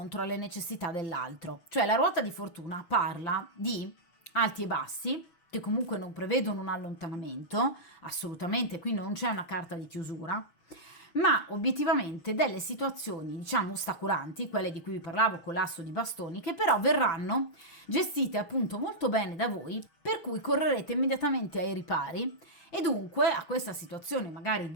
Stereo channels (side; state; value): right; late; 6.3 ms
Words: alle necessità dell'altro. Cioè la ruota di fortuna parla di alti e bassi, che comunque non prevedono un allontanamento, assolutamente, qui non c'è una carta di chiusura, ma obiettivamente delle situazioni, diciamo, ostacolanti, quelle di cui vi parlavo con l'asso di bastoni, che però verranno gestite appunto molto bene da voi, per cui correrete immediatamente ai ripari e dunque a questa situazione magari